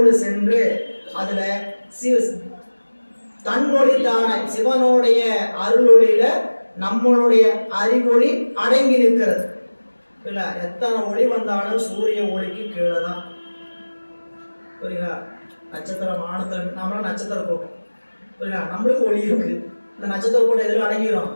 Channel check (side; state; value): both; inverted; correlation -1.00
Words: சென்று அதுல தன்னொழி தானே சிவனுடைய அருளொளியில நம்மளுடைய அறிவொளி அடங்கி நிற்கிறது. இல்ல எத்தனை ஒளி வந்தாலும் சூரிய ஒளிக்கு கீழே தான். புரியுங்களா? நட்சத்திரம் வானத்துல நம்மளாம் நட்சத்திர கூட்டம். புரியுங்களா? நம்மளுக்கு ஒளி இருக்கு. இந்த நட்சத்திர கூட்டம் எதில் அடங்கிடும்?